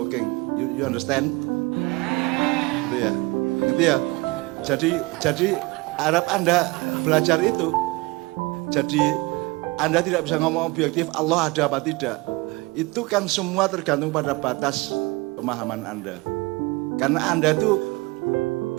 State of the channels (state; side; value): quieter; left; 23.7 dB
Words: You understand? Gitu ya. Gitu ya. Jadi harap Anda belajar itu. Jadi Anda tidak bisa ngomong objektif Allah ada apa tidak. Itu kan semua tergantung pada batas pemahaman Anda. Karena Anda itu